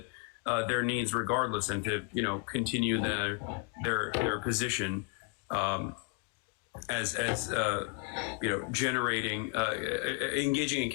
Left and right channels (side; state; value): right; quieter; 31.7 dB